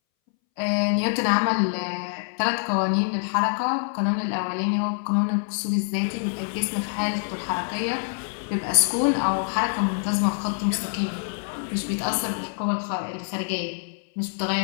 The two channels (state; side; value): silent; right; 61 dB below the other